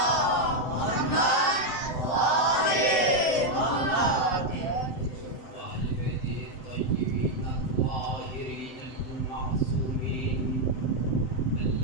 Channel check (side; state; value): right; late; 7.8 ms